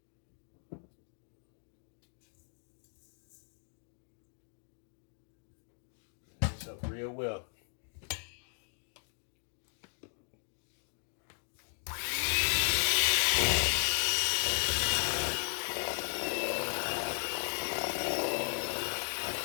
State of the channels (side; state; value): right; silent; 54 dB below the other